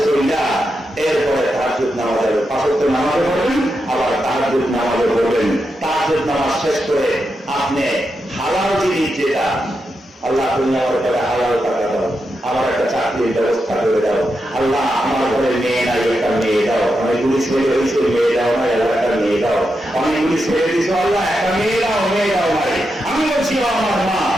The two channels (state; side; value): normal; both; correlation 0.86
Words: চলিয়া এরপরে তাহাজ্জুদ নামাজে 5 ওয়াক্ত নামাজে পড়বেন, আবার তাহাজ্জুদ নামাজে পড়বেন। তাহাজ্জুদ নামাজ শেষ করে আপনি হালাল জিনিস যেটা আল্লাহ তুমি আমার ঘরে হালাল টাকা দাও, আমার একটা চাকরির ব্যবস্থা করে দাও, আল্লাহ আমার ঘরে মেয়ে নাই একটা মেয়ে দাও, অনেকগুলি ছেলে হয়েছে মেয়ে দাও না, একটা মেয়ে দাও, অনেকগুলি ছেলে দিছো আল্লাহ একটা মেয়ে দাও নাই। আমি বলছি ও আমার মা,